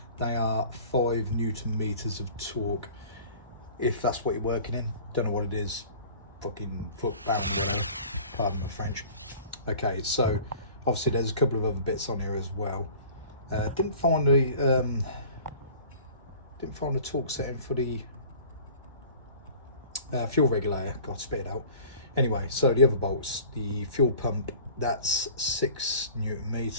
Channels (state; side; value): inverted; both; correlation -0.45